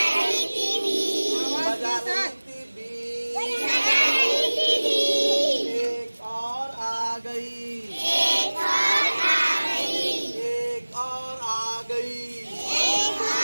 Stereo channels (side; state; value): both; inverted; correlation -1.00